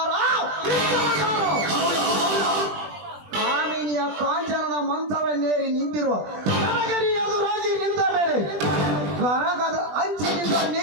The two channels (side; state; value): left; late; 20 ms